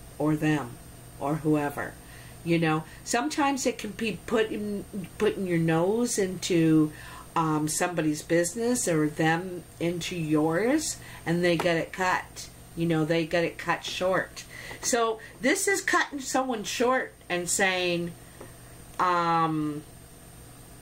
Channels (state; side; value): identical; both; correlation 1.00